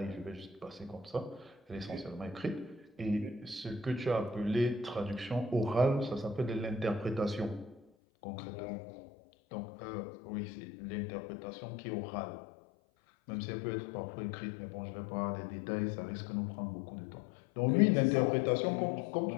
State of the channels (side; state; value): right; drops out; at 7.8 s